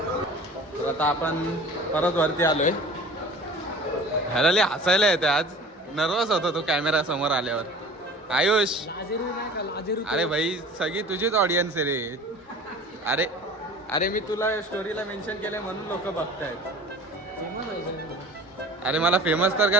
तर आता आपण परत वरती आलोय. ह्याला लय हसायला येते आज. नर्वस होतो तो कॅमेरा समोर आल्यावर. आयुष अरे भाई सगळी तुझीच ऑडियन्स आहे रे. अरे अरे मी तुला स्टोरीला मेन्शन केलंय म्हणून लोक बघतायत. अरे मला फेमस तर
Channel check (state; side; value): normal; both; correlation 0.42